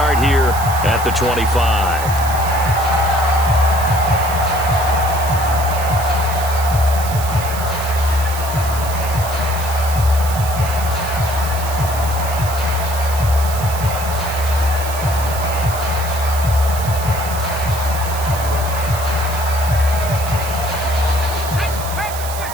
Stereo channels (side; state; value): right; noise; hiss, 10 dB below the sound